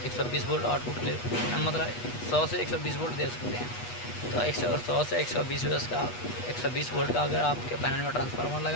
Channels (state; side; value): late; right; 8.2 ms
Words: 120 वोल्ट आउटपुट ले, मतलब 100 से 120 वोल्ट दे सकते हैं। तो 100 से 120 वोल्ट का अगर आपके पैनल में ट्रांसफार्मर